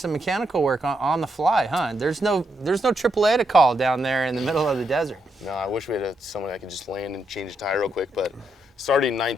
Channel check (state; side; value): normal; both; correlation 0.80